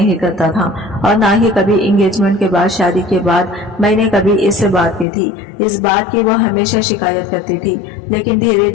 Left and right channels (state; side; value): drops out; right; at 5.1 s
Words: करता था और ना ही कभी एंगेजमेंट के बाद, शादी के बाद मैंने कभी इससे बात की थी। इस बात की वह हमेशा शिकायत करती थी, लेकिन धीरे